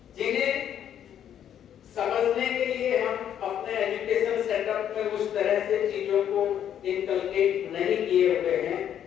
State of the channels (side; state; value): right; quieter; 9.8 dB